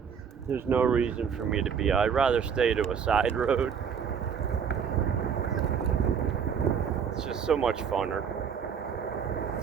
there's no reason for me to be. I'd rather stay to a side road. It's just so much funner.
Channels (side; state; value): left; quieter; 7.1 dB